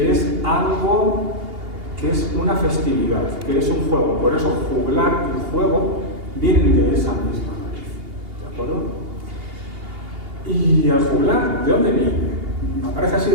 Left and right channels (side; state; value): left; late; 2.8 ms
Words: es algo que es una festividad, que es un juego. Por eso juglar y juego vienen de esa misma raíz, ¿de acuerdo? Y el juglar, ¿de dónde viene? Aparece así